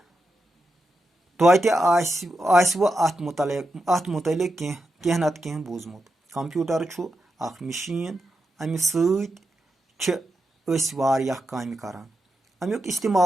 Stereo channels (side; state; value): both; normal; correlation 0.87